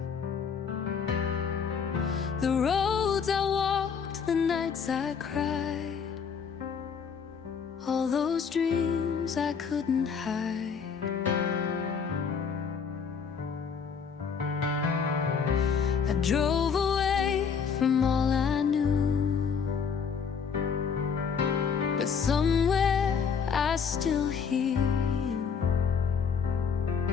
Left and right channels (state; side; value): quieter; right; 6.4 dB